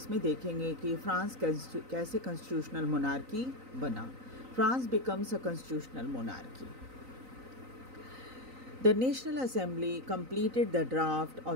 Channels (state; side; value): late; left; 3.9 ms